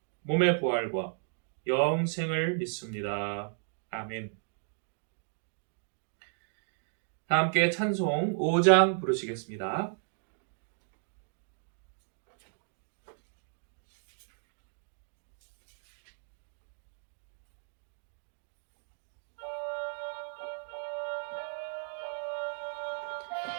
몸의 부활과 영생을 믿습니다. 아멘. 다 함께 찬송 5장 부르시겠습니다.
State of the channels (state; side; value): silent; left; digital silence